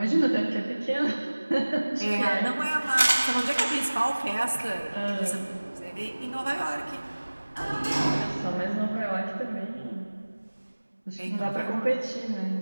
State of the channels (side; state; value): both; inverted; correlation -1.00